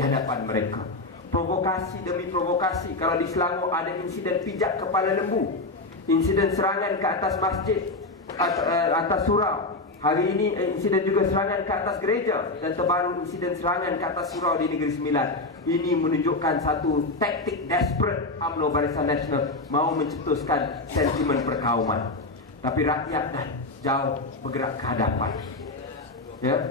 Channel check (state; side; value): quieter; right; 3.0 dB